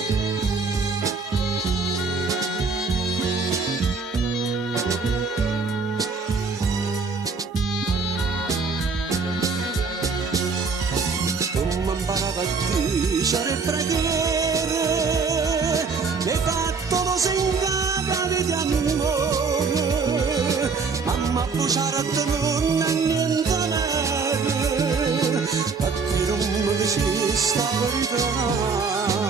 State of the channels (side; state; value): left; quieter; 4.8 dB